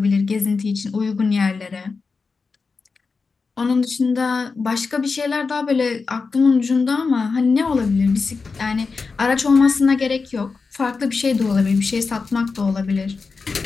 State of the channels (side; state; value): right; quieter; 4.5 dB